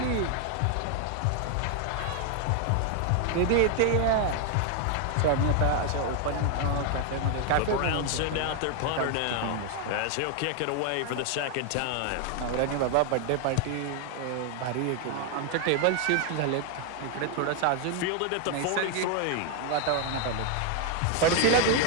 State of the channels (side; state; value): both; different; correlation 0.00